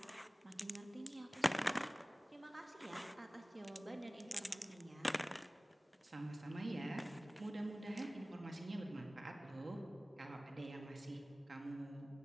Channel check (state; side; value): normal; both; correlation 0.98